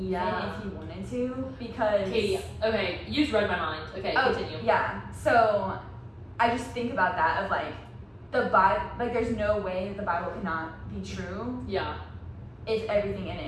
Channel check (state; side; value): identical; both; correlation 1.00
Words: Yeah. if he wanted to, because Katie, okay, you just read my mind. Okay, continue. yeah. So I just think about that of like the Bible, like there's no way that the Bible cannot be true Yeah. if everything in